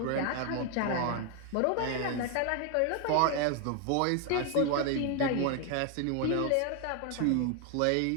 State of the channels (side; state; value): both; different; correlation 0.00